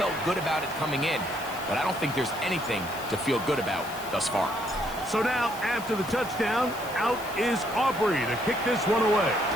good about it coming in, but I don't think there's anything to feel good about thus far. So now, after the touchdown, out is Aubrey to kick this one away.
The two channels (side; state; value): right; noise; hiss, 16 dB below the sound